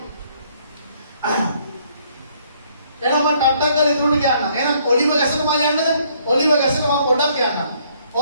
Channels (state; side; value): inverted; both; correlation -0.66